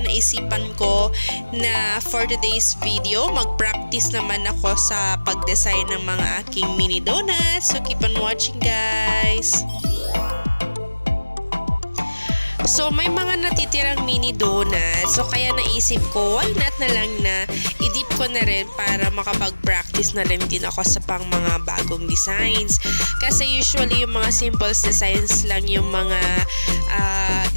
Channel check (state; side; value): inverted; both; correlation -1.00